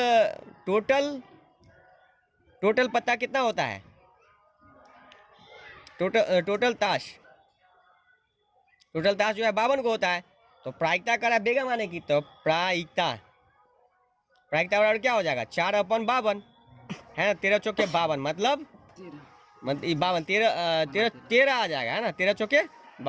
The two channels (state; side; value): identical; both; correlation 1.00